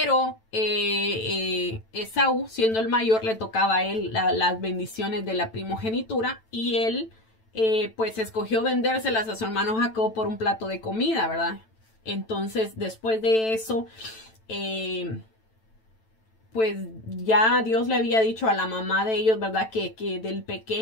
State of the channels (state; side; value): late; right; 9.0 ms